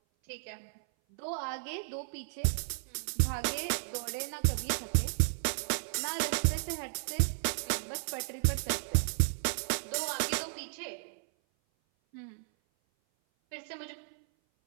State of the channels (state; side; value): silent; left; 55 dB below the other